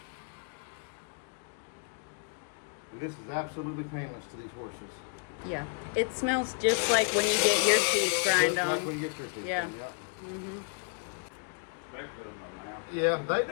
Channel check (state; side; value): quieter; right; 39.3 dB